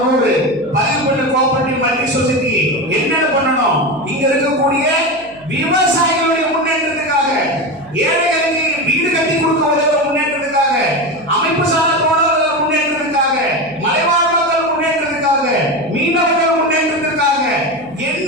100 பதிவு பண்ண கோஆபரேட்டிவ் மல்டி சொசைட்டி என்னென்ன பண்ணணும்? இங்க இருக்கக்கூடிய விவசாயிகளுடைய முன்னேற்றத்துக்காக, ஏழைகளுக்கு வீடு கட்டி கொடுக்க உதவுற முன்னேற்றத்துக்காக, அமைப்பு சார்ந்த தோழர்கள் முன்னேற்றத்துக்காக, மலைவாழ் மக்கள் முன்னேற்றத்துக்காக, மீனவர்கள் முன்னேற்றத்துக்காக, என்ன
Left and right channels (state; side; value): noise; right; hum, 27 dB below the sound